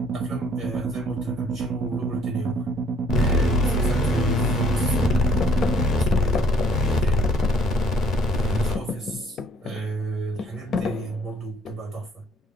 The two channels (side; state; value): both; normal; correlation 0.59